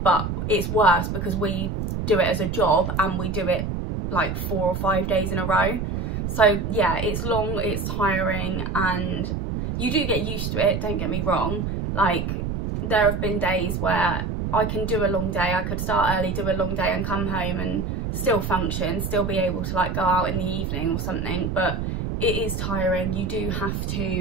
it's worse because we do it as a job and we do it like 4 or 5 days in a row. So yeah, it's long, it's tiring, and you do get used to it, don't get me wrong. Like, there have been days where I can do a long day, I could start early, do a long day and come home and still function, still be able to like go out in the evening or something, but it is tiring. You do have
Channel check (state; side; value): noise; right; rumble, 3 dB below the sound